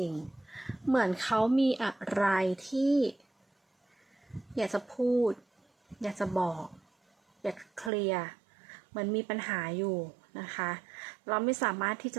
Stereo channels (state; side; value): drops out; left; at 7.9 s